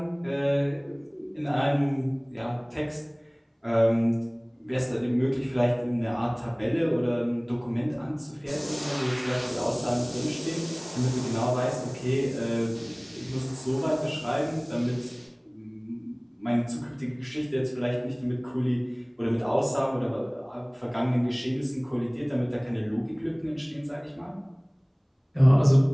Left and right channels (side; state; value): both; identical; correlation 1.00